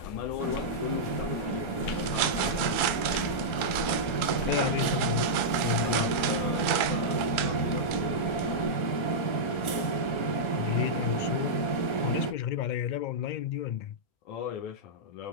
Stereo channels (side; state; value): right; late; 1.3 ms